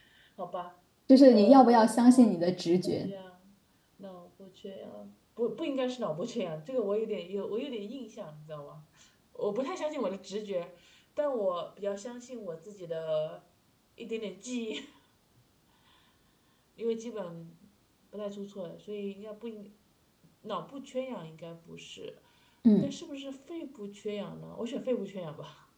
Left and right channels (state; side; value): identical; both; correlation 1.00